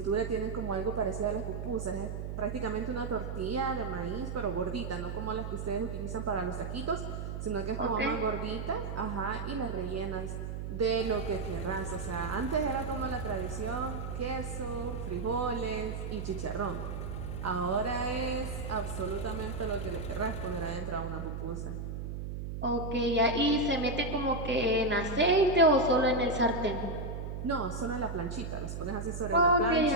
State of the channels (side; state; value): right; noise; hum, 5 dB below the sound